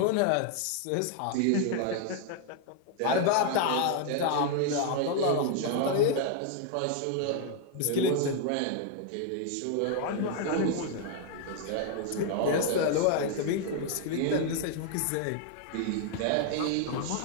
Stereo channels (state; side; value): different; both; correlation 0.00